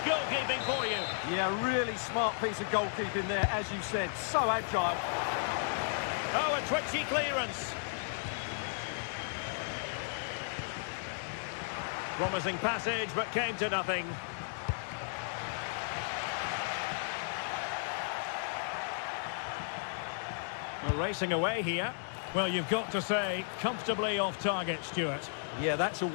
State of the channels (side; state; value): right; silent; digital silence